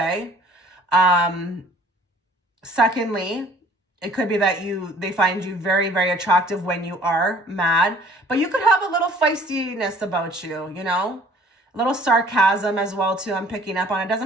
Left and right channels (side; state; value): both; normal; correlation 0.54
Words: Secondly, it could be that they find you very, very attractive when you are mad, but you could have a little feistiness about you, you know, a little sarcasm as well too. I'm picking up on it.